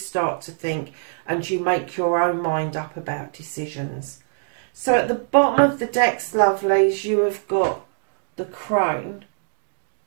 to think and you make your own mind up about decisions. So at the bottom of the decks, lovelies, you have got the Crone,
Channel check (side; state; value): left; silent; digital silence